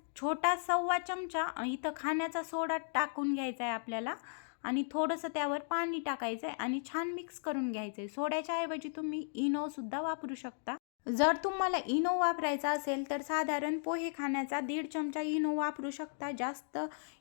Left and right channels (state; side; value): silent; right; digital silence